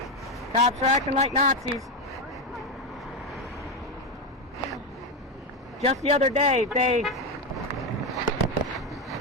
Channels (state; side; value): normal; both; correlation 0.11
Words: Cops are acting like Nazis. Just the other day, they